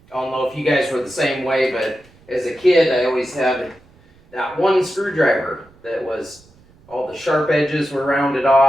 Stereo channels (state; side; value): noise; right; rumble, 29 dB below the sound